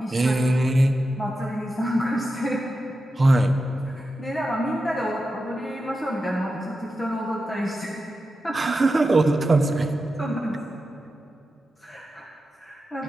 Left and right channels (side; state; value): both; normal; correlation 0.91